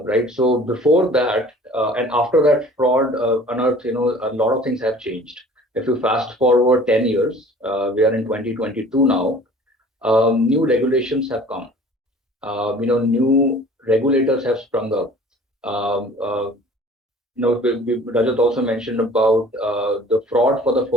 Right. So before that and after that fraud unearthed, a lot of things have changed. If you fast forward 10 years, we are in 2022 now. New regulations have come. New regulators have sprung up. Rajat also mentioned about the fraud for the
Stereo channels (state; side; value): normal; both; correlation 0.48